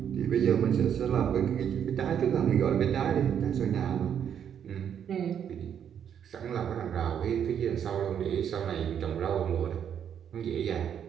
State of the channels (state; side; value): quieter; left; 8.7 dB